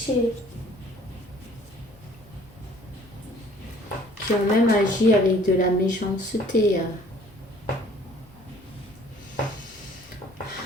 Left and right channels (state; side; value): normal; both; correlation 0.55